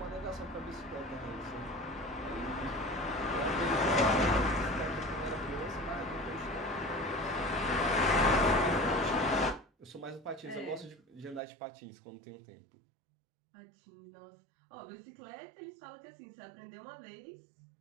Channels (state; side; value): drops out; left; at 11.4 s